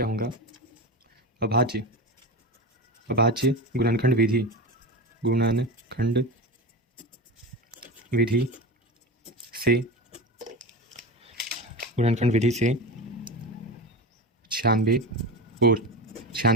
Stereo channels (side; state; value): both; normal; correlation 0.24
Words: होगा। अभाज्य अभाज्य गुणनखंड विधि से गुणनखंड विधि से 96 और